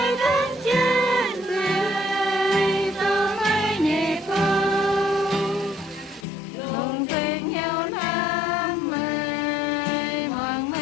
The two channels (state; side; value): drops out; right; at 6.2 s